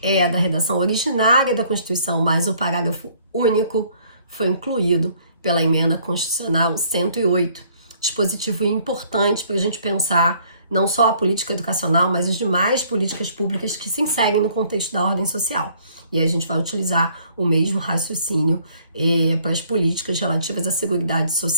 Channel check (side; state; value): both; inverted; correlation -0.61